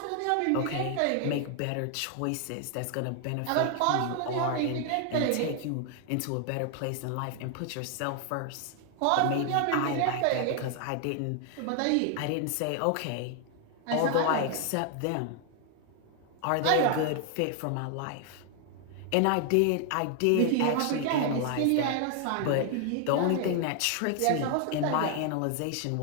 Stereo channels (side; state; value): both; different; correlation 0.00